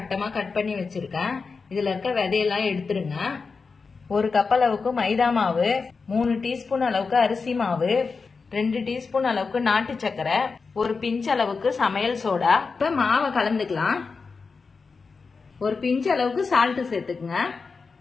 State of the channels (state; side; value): quieter; right; 4.7 dB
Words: கட் பண்ணி வச்சிருக்கேன். இதுல இருக்க விதையெல்லாம் எடுத்துருங்க. 1 கப் அளவுக்கு மைதா மாவு, 3 டீஸ்பூன் அளவுக்கு அரிசி மாவு, 2 டீஸ்பூன் அளவுக்கு நாட்டு சக்கரை, 1 பிஞ்ச் அளவுக்கு சமையல் சோடா. இப்ப மாவை கலந்துக்கலாம். 1 பிஞ்ச் அளவுக்கு சால்ட் சேர்த்துக்குங்க.